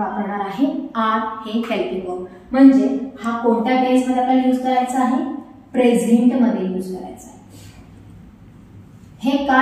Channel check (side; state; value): both; identical; correlation 1.00